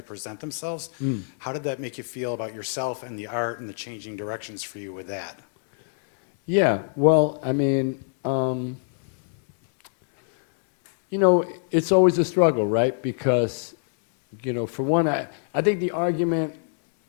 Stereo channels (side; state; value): right; silent; 62 dB below the other